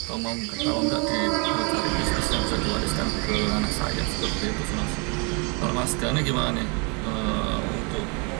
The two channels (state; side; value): quieter; left; 32.9 dB